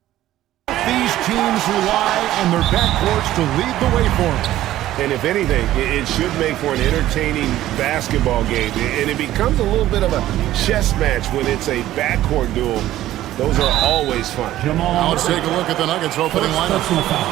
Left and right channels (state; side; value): quieter; left; 14.1 dB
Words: These teams rely on their backcourts to lead the way for them. And if anything, it should make for an entertaining basketball game. And it becomes a little bit of a chess match when it's a backcourt duel. Those are always fun. Now let's take a look at the Nuggets opening lineup.